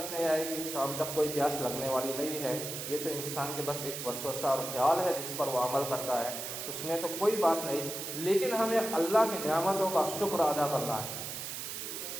نہیں آئے گی. شام تک کوئی پیاس لگنے والی نہیں ہے. یہ تو انسان کے بس ایک وسوسہ اور خیال ہے جس پر وہ عمل کرتا ہے، اس میں تو کوئی بات نہیں. لیکن ہمیں اللہ کی نعمتوں کا شکر ادا کرنا ہے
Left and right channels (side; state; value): right; noise; hiss, 6 dB below the sound